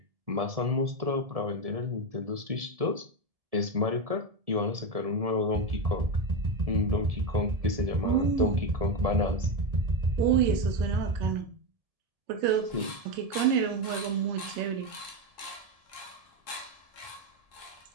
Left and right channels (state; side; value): late; left; 1.7 ms